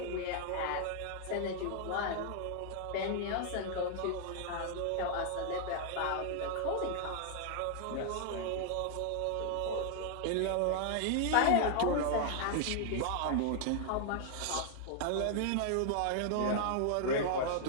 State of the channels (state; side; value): different; both; correlation 0.00